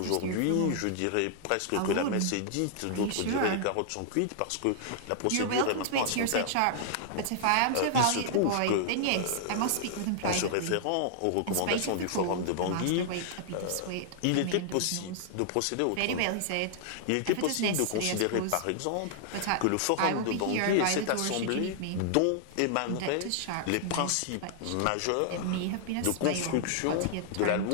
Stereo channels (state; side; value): different; both; correlation -0.01